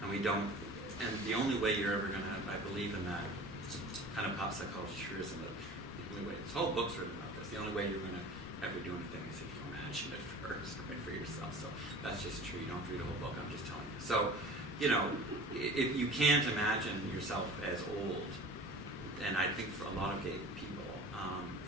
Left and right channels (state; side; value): normal; both; correlation 0.40